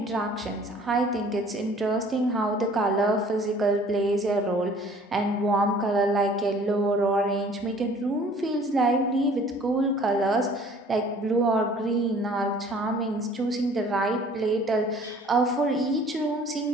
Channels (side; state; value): both; normal; correlation 0.52